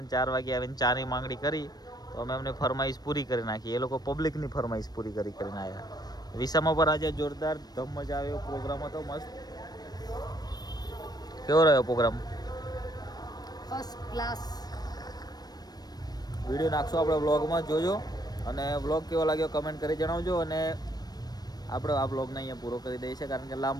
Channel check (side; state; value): right; late; 0.19 ms